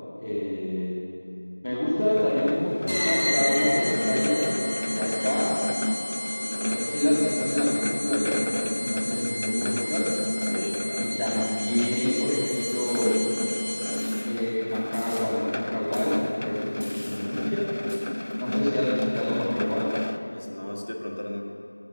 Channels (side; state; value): both; inverted; correlation -1.00